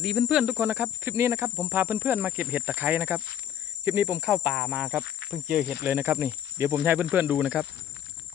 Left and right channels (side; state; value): right; quieter; 10.3 dB